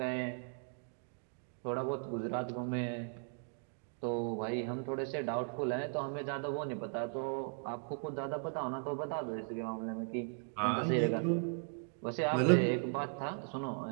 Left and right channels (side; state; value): left; silent; 53 dB below the other